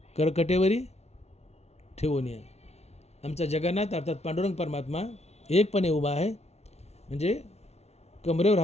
करकटेवरी ठेवून या. आमचा जगन्नाथ अर्थात पांडुरंग परमात्मा एकपणे उभा आहे, म्हणजे कमरेवर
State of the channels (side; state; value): right; late; 0.31 ms